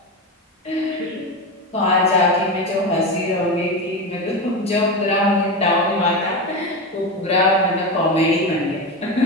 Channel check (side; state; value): both; normal; correlation 0.18